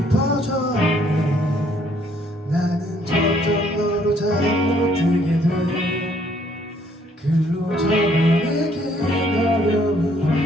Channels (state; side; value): normal; both; correlation 0.65